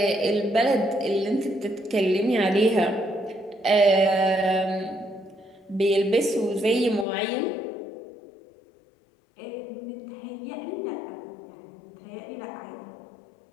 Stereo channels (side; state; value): right; drops out; at 7.1 s